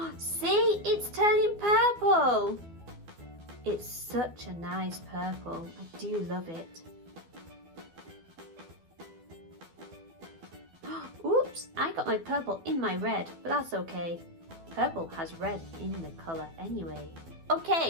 See, it's turning purple. It's such a nice purple, I do love it. Oops, I got my purple in my red, but that's okay. Purple has red in the colour anyway. Okay,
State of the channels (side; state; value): left; late; 12 ms